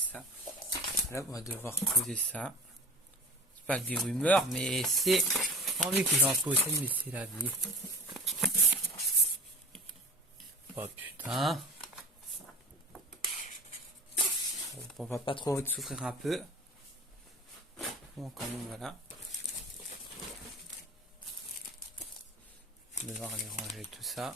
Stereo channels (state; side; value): normal; both; correlation 0.37